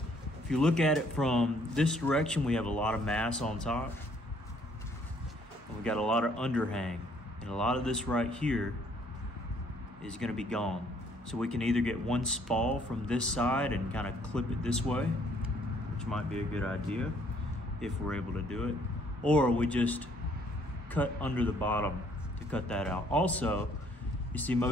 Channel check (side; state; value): both; normal; correlation 0.64